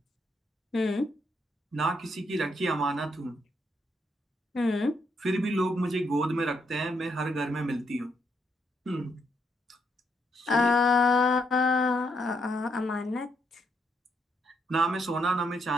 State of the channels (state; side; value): normal; both; correlation 0.76